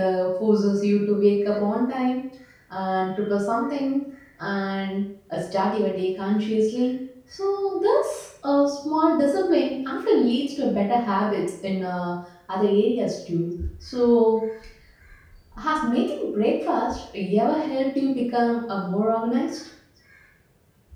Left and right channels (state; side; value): identical; both; correlation 1.00